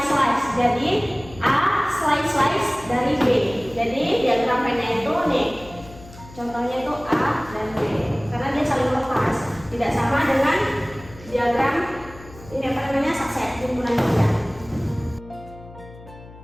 Jadi A slice dari B. Jadi diagram Venn-nya itu nih. Contohnya itu A dan B. Karena dia saling lepas. Tidak sama dengan diagram ini apa namanya subset himpunan bagian.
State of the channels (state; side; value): noise; left; hum, 19 dB below the sound